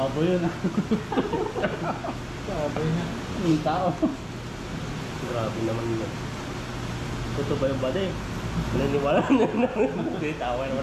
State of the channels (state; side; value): identical; both; correlation 1.00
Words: yun ah. Sabi niya. Yung tao. Grabe naman yun. Totoo ba yung bade? Naniniwala na naman. Hindi, tawa